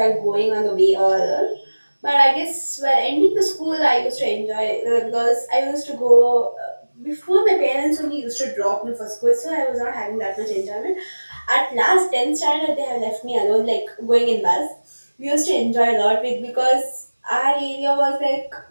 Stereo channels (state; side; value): inverted; both; correlation -1.00